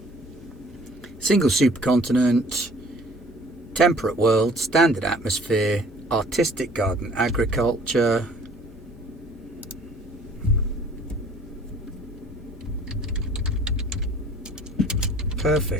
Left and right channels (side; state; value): both; normal; correlation 0.53